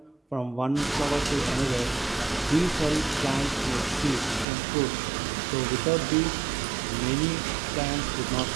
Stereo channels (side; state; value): left; drops out; at 4.5 s